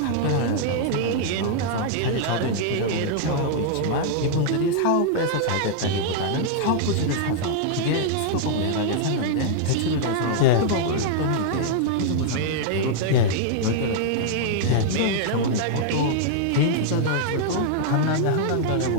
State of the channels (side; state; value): both; different; correlation -0.01